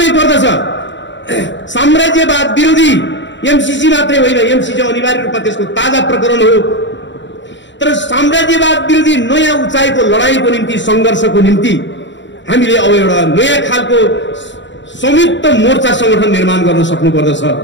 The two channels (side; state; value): right; late; 0.53 ms